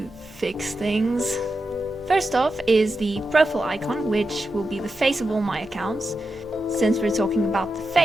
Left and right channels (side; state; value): left; noise; hum, 26 dB below the sound